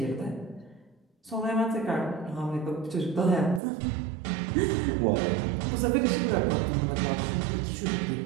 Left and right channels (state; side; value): drops out; left; at 3.6 s